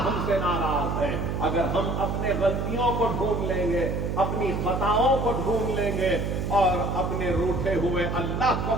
ہم سے ناراض ہے۔ اگر ہم اپنے غلطیوں کو ڈھونڈ لیں گے، اپنی خطاؤں کو ڈھونڈ لیں گے، اور اپنے روٹھے ہوئے اللہ کو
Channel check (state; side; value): noise; right; hum, 1 dB below the sound